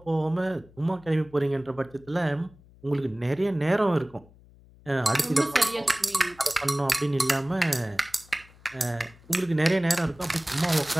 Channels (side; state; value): left; noise; hum, 25 dB below the sound